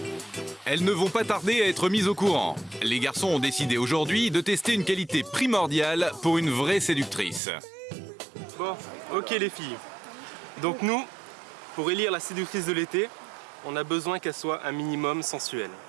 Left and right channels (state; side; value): drops out; left; at 7.4 s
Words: Elles ne vont pas tarder à être mises au courant. Les garçons ont décidé aujourd'hui de tester une qualité primordiale pour une vraie séductrice. Bon, ok les filles. Donc nous, pour élire la séductrice de l'été, on a besoin qu'elle soit un minimum sensuelle.